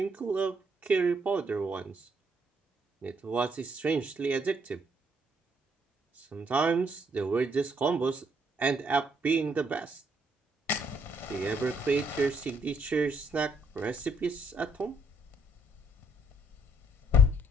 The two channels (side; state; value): both; normal; correlation 0.69